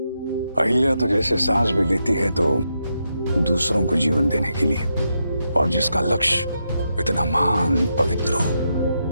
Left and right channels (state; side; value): inverted; both; correlation -0.83